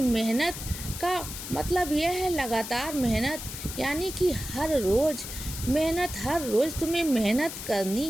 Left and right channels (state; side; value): noise; left; hiss, 9 dB below the sound